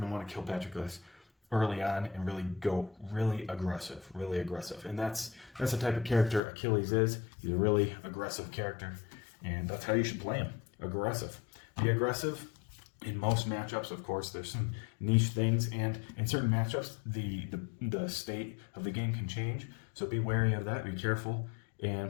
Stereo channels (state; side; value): drops out; right; at 6.4 s